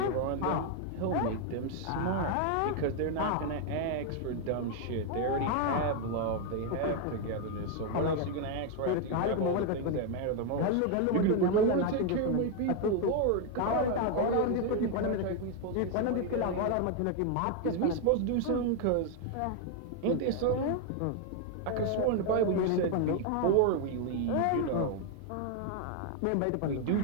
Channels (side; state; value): both; different; correlation 0.01